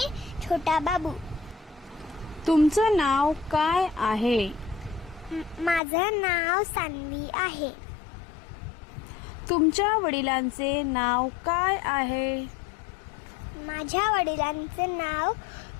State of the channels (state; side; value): drops out; right; at 5.8 s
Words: छोटा बाबू. तुमचं नाव काय आहे? माझं नाव सान्वी आहे. तुमच्या वडिलांचे नाव काय आहे? माझ्या वडिलांचे नाव